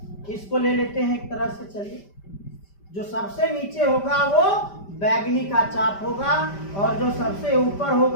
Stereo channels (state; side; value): late; right; 5.1 ms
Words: इसको ले लेते हैं एक तरह से। चलिए, जो सबसे नीचे होगा वो बैगनी का चाप होगा, और जो सबसे ऊपर